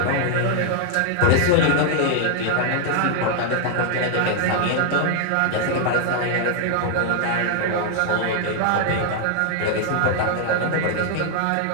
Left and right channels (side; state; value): both; different; correlation 0.00